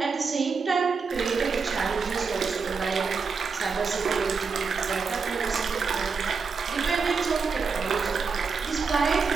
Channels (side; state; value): left; quieter; 5.1 dB